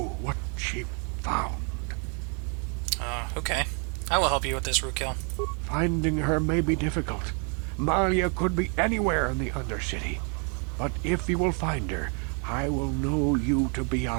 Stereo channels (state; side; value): quieter; left; 38.4 dB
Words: what she found. Okay. I will help you with this, Rukil. Finding her may be difficult. Malia could be anywhere in the Undercity. But if you will find her, I will know you to be